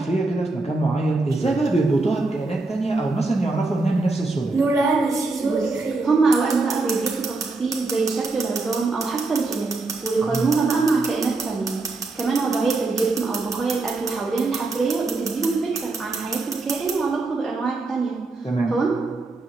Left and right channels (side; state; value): left; quieter; 3.4 dB